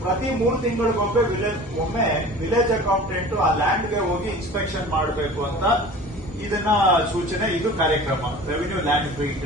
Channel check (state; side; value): normal; both; correlation 0.41